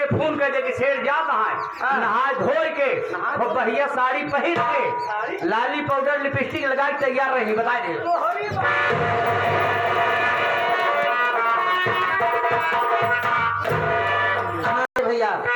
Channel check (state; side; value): identical; both; correlation 1.00